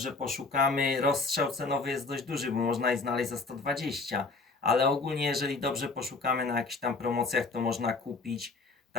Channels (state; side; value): quieter; right; 4.0 dB